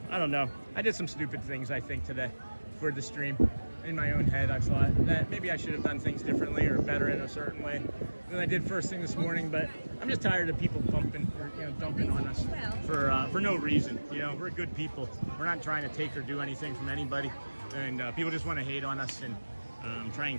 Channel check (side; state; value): both; inverted; correlation -1.00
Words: don't know. I did some stupid things, I think, today for the stream. In my own head, I thought that maybe I should have done things differently or better in a certain way than I did first thing this morning. But I'm just tired of people dumping on us for no reason. We're good people. We're not trying to take or do anything from anybody, and people just want to hate on us and try